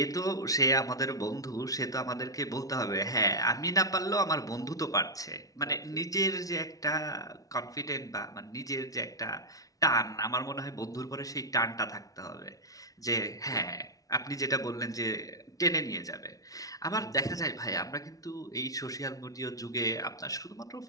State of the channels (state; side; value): late; right; 0.17 ms